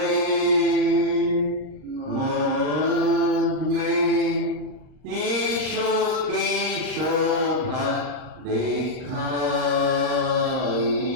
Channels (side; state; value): left; late; 39 ms